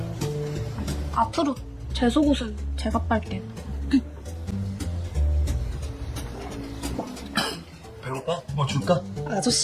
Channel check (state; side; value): identical; both; correlation 1.00